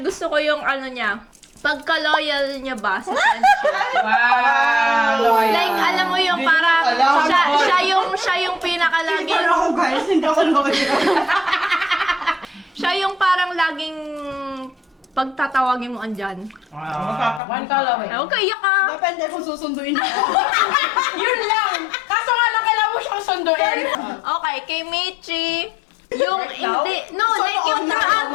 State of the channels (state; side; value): drops out; right; at 17.4 s